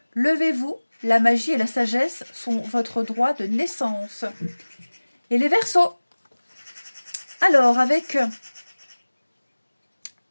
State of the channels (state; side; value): inverted; both; correlation -1.00